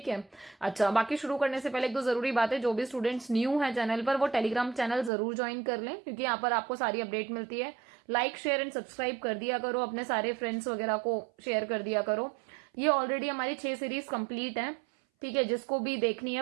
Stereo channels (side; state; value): left; drops out; at 5.1 s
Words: है। अच्छा, बाकी शुरू करने से पहले एक दो जरूरी बात है। जो भी स्टूडेंट्स न्यू है चैनल पर, वो टेलीग्राम चैनल जरूर ज्वाइन कर लें, क्योंकि यहाँ पर आपको सारी अपडेट मिलती है। लाइक शेयर एंड सब्सक्राइब कर दिया करो, अपने सारे फ्रेंड्स वगैरह को शेयर कर दिया करो। ये ऑलरेडी हमारी 6 सीरीज कंप्लीट है, ठीक है। जिसको भी देखनी